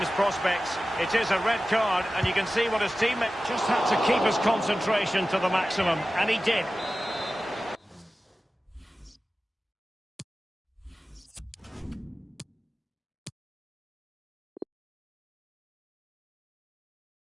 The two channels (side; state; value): both; normal; correlation 0.95